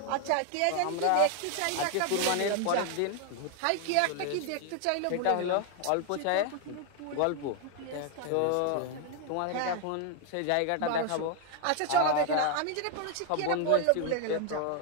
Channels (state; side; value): different; both; correlation 0.01